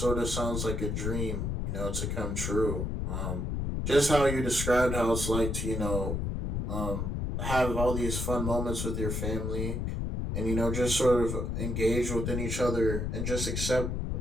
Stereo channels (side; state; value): left; noise; rumble, 1 dB below the sound